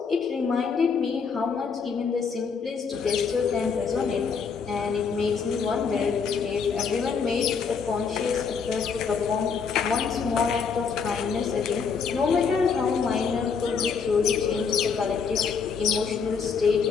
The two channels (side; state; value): right; quieter; 5.8 dB